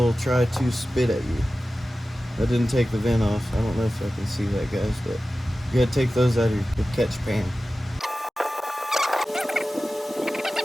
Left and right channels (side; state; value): both; normal; correlation 0.95